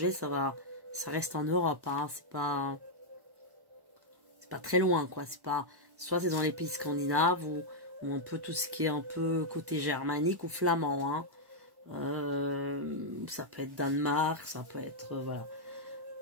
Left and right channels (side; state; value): left; late; 1.1 ms